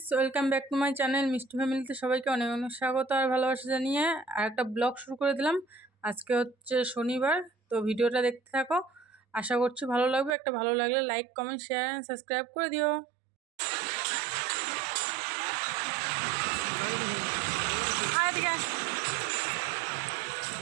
welcome back to my channel মিষ্টি ফ্যামিলিতে সবাইকে অনেক অনেক স্বাগত আর ভালোবাসা জানিয়ে আর একটা ব্লগ শুরু করে দিলাম। আজকে হচ্ছে শনিবার, তো ভিডিওটা দেখতে থাকো, আশা করছি ভালো লাগবে। একটা ভালো লাগলে like comment share and subscribe করে দিও।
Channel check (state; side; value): drops out; left; at 10.3 s